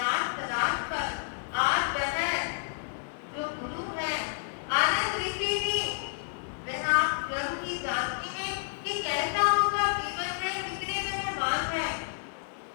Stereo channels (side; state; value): right; silent; digital silence